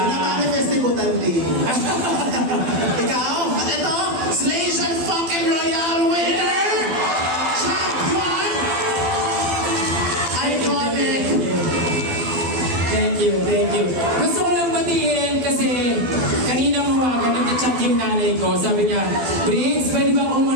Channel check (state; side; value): late; left; 12 ms